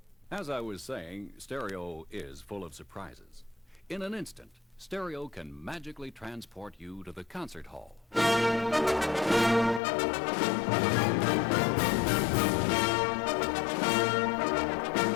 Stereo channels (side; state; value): right; drops out; at 9.8 s